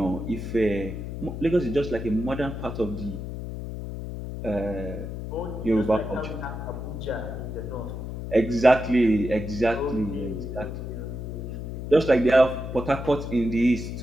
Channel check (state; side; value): noise; left; hum, 7 dB below the sound